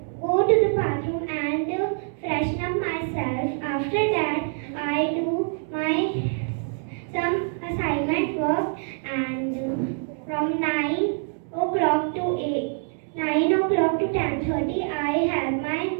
go to the bathroom and freshen up myself. After that, I do my some assignment work, and from 9 o'clock to 9 o'clock to 10:30 I help my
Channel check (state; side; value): silent; left; 62 dB below the other